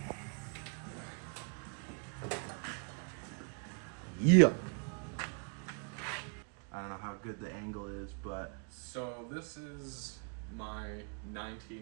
Yeah. I don't know how good the angle is, but So this is my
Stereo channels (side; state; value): left; quieter; 39.8 dB